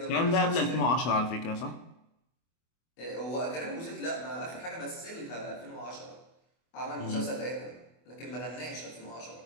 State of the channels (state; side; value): late; right; 24 ms